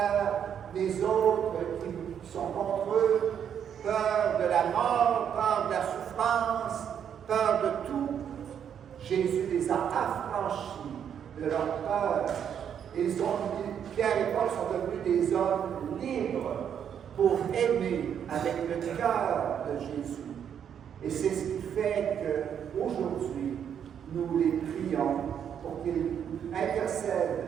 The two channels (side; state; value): left; quieter; 8.5 dB